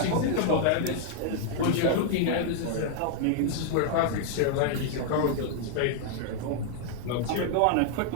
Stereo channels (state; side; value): different; both; correlation 0.00